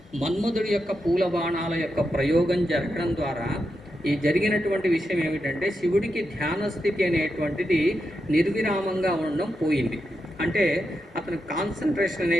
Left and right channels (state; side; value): normal; both; correlation 0.86